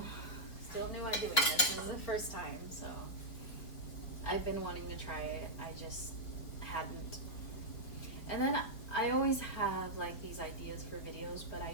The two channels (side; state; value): right; late; 4.2 ms